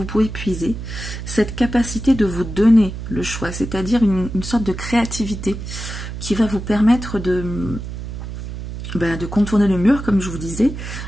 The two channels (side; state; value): right; noise; hum, 8 dB below the sound